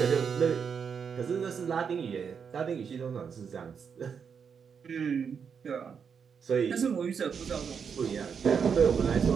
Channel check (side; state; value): left; quieter; 6.6 dB